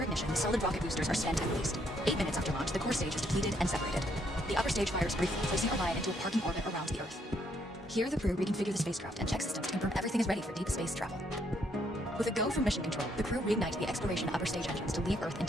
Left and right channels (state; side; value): normal; both; correlation 0.71